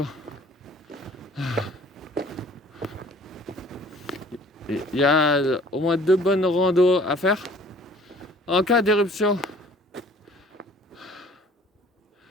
Il y a au moins 2 bonnes randos à faire. En cas d'éruption,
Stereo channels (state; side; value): normal; both; correlation 0.52